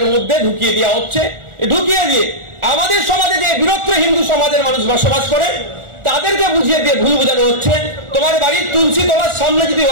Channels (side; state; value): left; late; 1.4 ms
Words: মধ্যে ঢুকিয়ে দেওয়া হচ্ছে। ঢুকিয়ে দিয়ে আমাদের সমাজে যে বৃহত্তর হিন্দু সমাজের মানুষ বসবাস করে তাদেরকে বুঝিয়ে দিয়ে ভুল বোঝানো হচ্ছে। তোমার বাড়ির তুলসী তোমার সামনে যদি